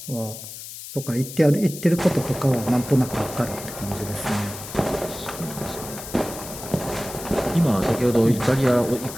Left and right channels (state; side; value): noise; left; hiss, 12 dB below the sound